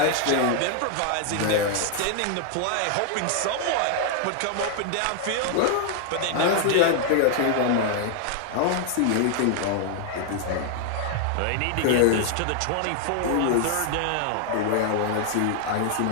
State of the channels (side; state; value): both; different; correlation 0.00